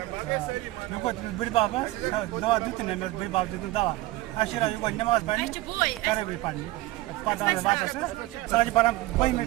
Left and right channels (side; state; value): left; quieter; 18.4 dB